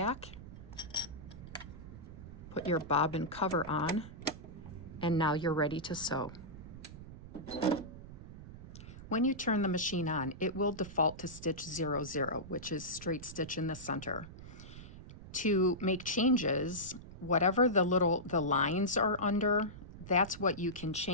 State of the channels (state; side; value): noise; right; rumble, 14 dB below the sound